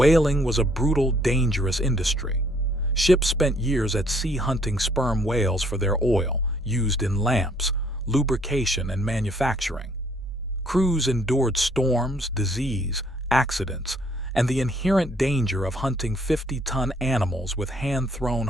was a brutal, dangerous industry. Ships spent years at sea hunting sperm whales for their oil, used in lamps, lubrication, and manufacturing. Crews endured storms, disease, accidents, and the inherent danger of hunting 50-ton animals with hand-thrown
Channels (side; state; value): both; normal; correlation 0.64